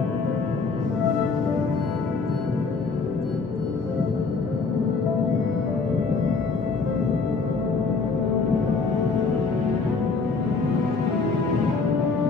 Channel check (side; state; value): right; quieter; 4.5 dB